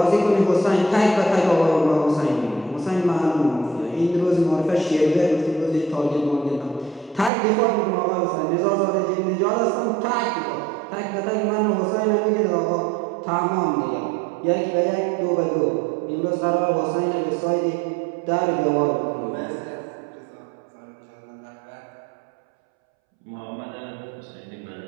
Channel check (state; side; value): drops out; left; at 7.3 s